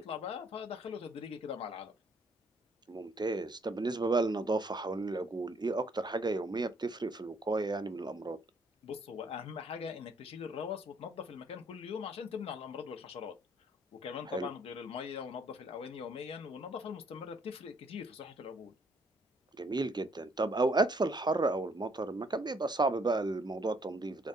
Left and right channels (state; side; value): normal; both; correlation 0.65